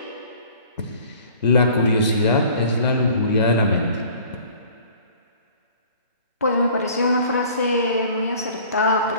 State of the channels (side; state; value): both; inverted; correlation -0.50